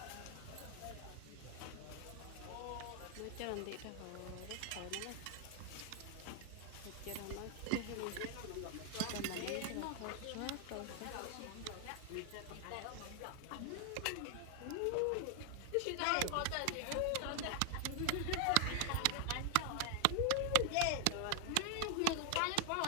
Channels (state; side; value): different; both; correlation 0.00